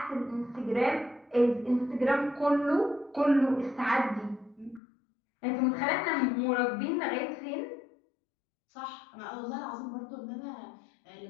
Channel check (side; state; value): right; drops out; at 4.8 s